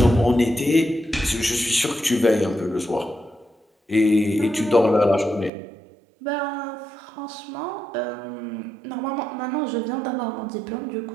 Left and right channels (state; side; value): drops out; left; at 5.5 s